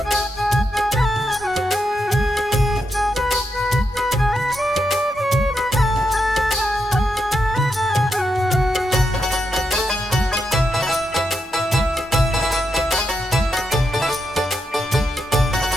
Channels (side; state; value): both; normal; correlation 0.83